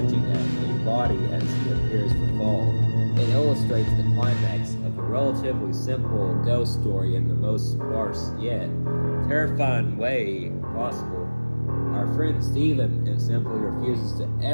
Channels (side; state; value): both; inverted; correlation -1.00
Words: at a body as he appears to fall. It illustrates the climax of a relatively simple ghost story in the most sparse yet terrifying way possible. Our friend Stephen simply refuses to